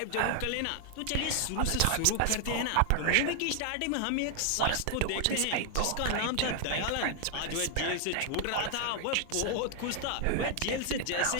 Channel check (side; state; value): both; different; correlation 0.00